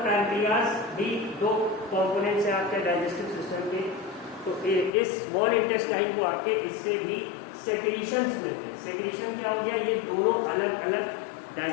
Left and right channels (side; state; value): right; drops out; at 4.9 s